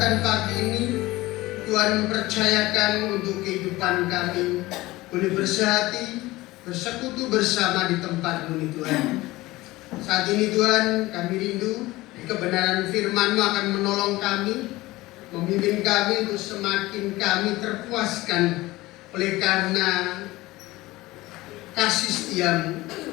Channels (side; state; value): right; quieter; 19.1 dB